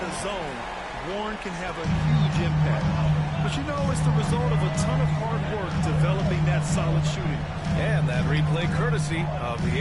the zone, Warren can have a huge impact. But you know, it's the result of a ton of hard work developing that solid shooting. And that replay courtesy of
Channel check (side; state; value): both; identical; correlation 1.00